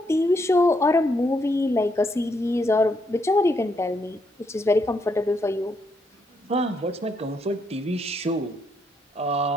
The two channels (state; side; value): normal; both; correlation 0.76